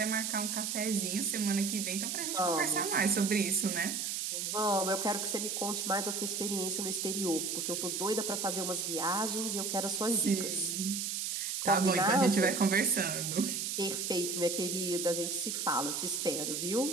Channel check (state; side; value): noise; right; hiss, 2 dB below the sound